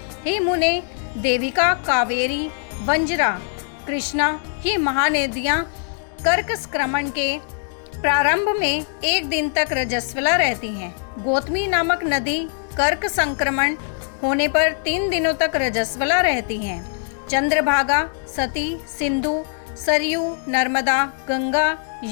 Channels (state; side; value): silent; right; digital silence